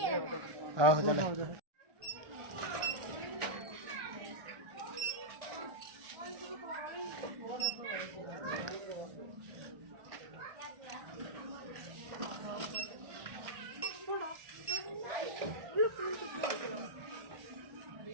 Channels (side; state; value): left; late; 1.4 ms